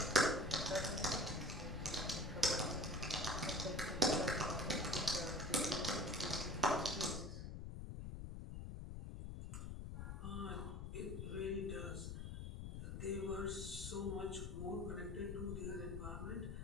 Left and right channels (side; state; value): left; noise; rumble, 6 dB below the sound